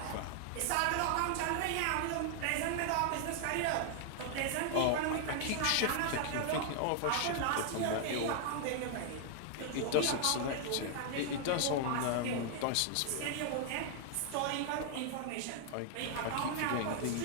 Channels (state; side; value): different; both; correlation 0.00